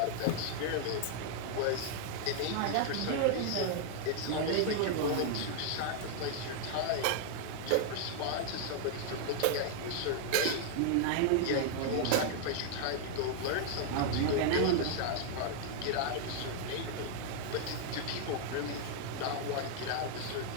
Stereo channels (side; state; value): both; different; correlation 0.00